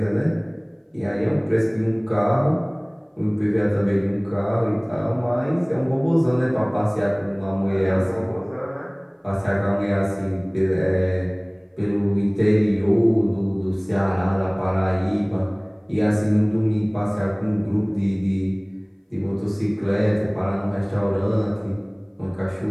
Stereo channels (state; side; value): identical; both; correlation 1.00